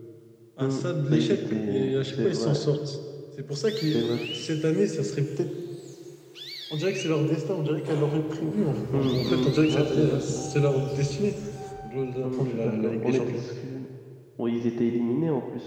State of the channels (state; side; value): identical; both; correlation 1.00